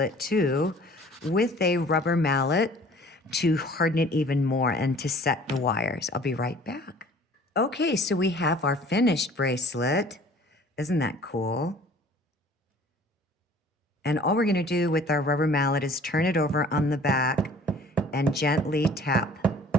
too with a rubber mallet to harden it even more and to set the wires. I'll be right back. Okay, so we have our finished bracelet. Isn't that cool? And all we're gonna do with our rubber mallet is turn it over on the back and gently tap.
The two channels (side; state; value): both; normal; correlation 0.50